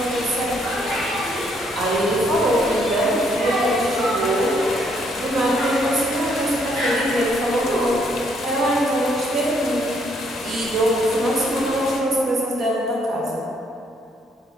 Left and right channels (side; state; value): both; normal; correlation 0.70